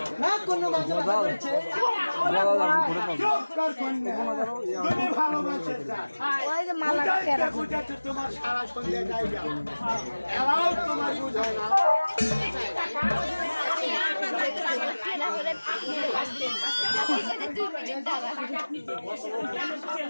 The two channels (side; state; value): both; inverted; correlation -1.00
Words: না কোনো বাজে বাজে করেছে চুপ কর কন্যা তুমি ভালোবাসে বুঝাতে বুঝাতে তোমার সারা সন্ধ্যে যাই যাও এরাও তোমার বুঝায় না